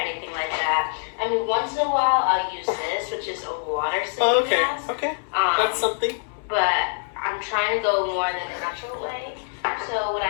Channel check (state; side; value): silent; right; digital silence